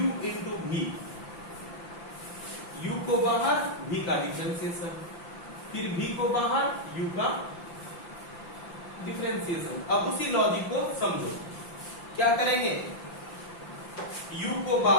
into v। u को बाहर, v का डिफरेंशिएशन, फिर v को बाहर, u का डिफरेंशिएशन। अब उसी लॉजिक को समझो, क्या करेंगे? u को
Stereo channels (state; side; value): late; right; 5.8 ms